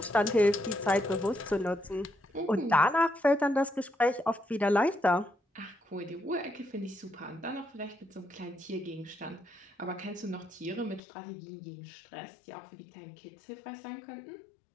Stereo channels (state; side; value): drops out; right; at 11.0 s